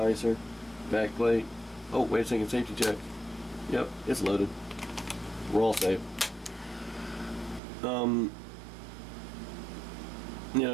Back plate. Oh, wait a second, safety check. Yep, it's loaded. We're all safe. You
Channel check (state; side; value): drops out; left; at 7.6 s